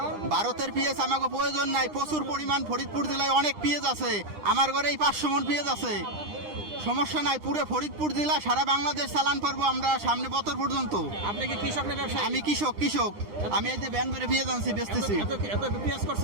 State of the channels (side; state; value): left; late; 9.9 ms